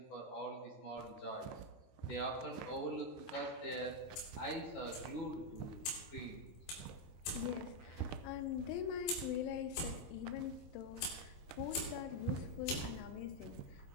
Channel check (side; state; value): right; late; 25 ms